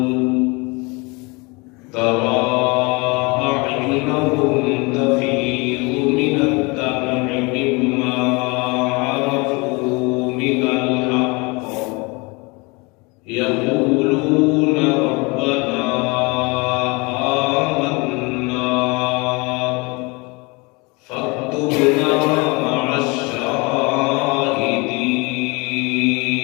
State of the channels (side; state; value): right; quieter; 27.5 dB